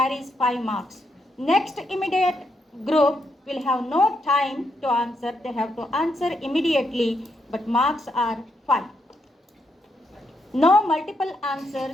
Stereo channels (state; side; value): normal; both; correlation 0.79